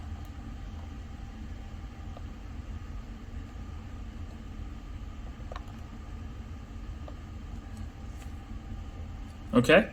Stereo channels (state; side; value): identical; both; correlation 1.00